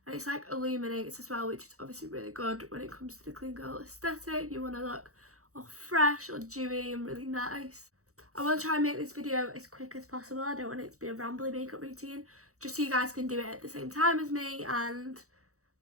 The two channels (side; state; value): left; late; 0.65 ms